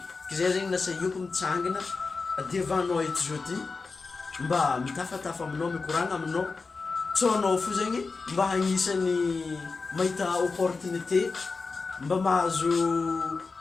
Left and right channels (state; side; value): quieter; right; 4.3 dB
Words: Zay zegny nasa ioko mitsangana, adiavanao eto zao ty, mba mitafatafa aminao, mikoragna aminao, tsônao fo zegny mba hagnisany mahita opportunité, mba mahazo